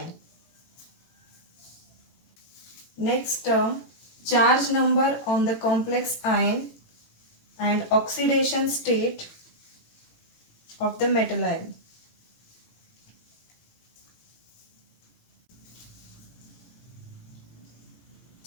Next term, charge number on the complex ion and oxidation state of the metal ion.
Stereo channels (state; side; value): late; right; 18 ms